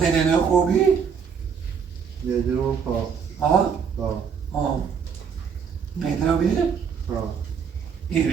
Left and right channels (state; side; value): quieter; left; 6.7 dB